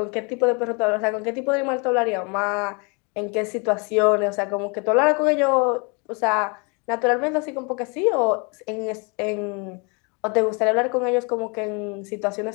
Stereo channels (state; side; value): quieter; right; 33.1 dB